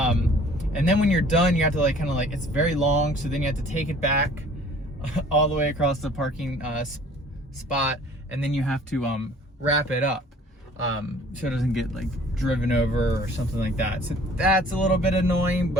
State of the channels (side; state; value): both; normal; correlation 0.52